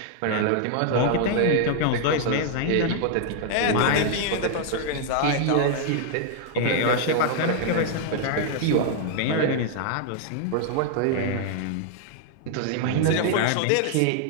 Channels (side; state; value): both; different; correlation 0.00